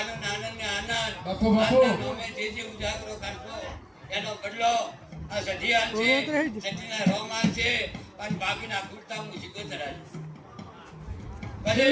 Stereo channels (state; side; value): identical; both; correlation 1.00